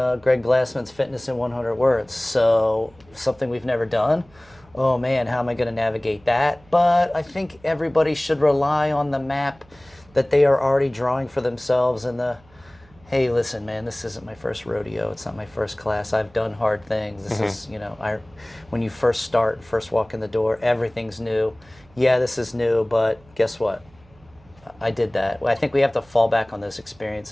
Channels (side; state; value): right; noise; hum, 28 dB below the sound